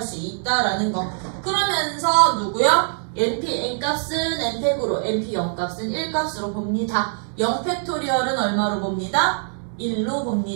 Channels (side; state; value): left; silent; 62 dB below the other